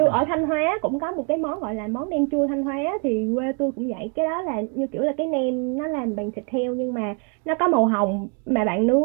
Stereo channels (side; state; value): left; quieter; 38.0 dB